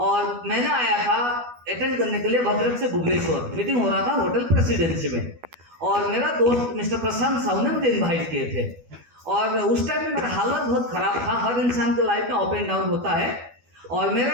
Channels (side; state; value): left; late; 12 ms